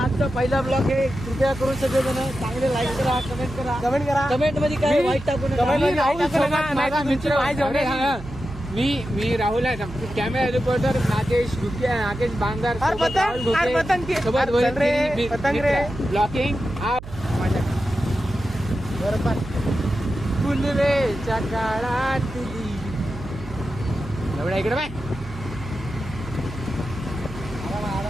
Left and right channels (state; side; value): noise; right; hum, 13 dB below the sound